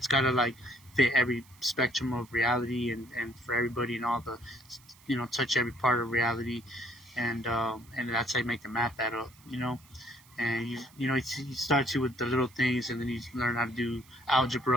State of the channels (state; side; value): noise; right; hiss, 26 dB below the sound